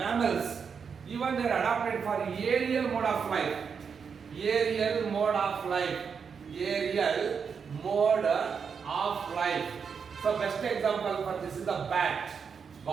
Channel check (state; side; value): quieter; left; 6.2 dB